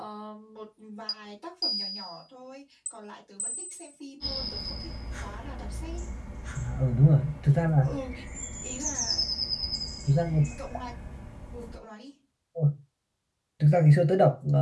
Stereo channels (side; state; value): both; identical; correlation 1.00